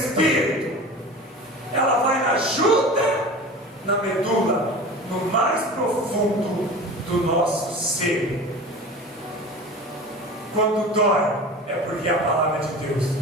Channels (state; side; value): normal; both; correlation 0.35